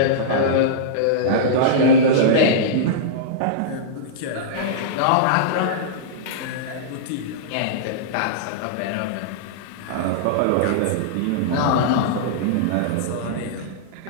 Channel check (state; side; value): different; both; correlation -0.03